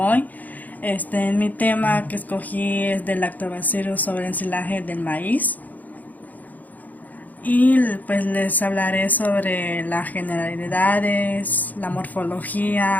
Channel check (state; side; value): late; right; 0.081 ms